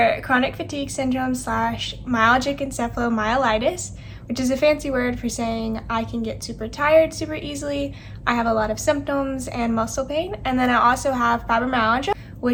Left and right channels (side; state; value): both; identical; correlation 1.00